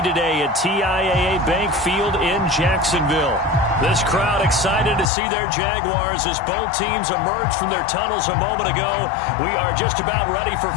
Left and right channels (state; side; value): drops out; right; at 5.1 s